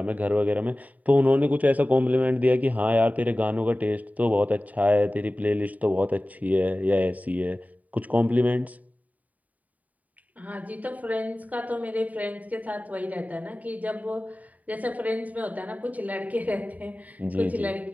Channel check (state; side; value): late; left; 0.073 ms